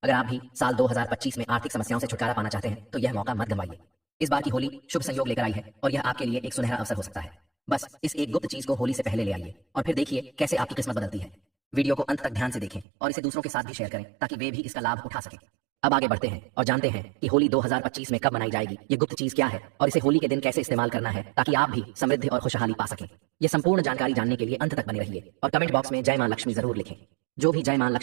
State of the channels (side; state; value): left; drops out; at 12.9 s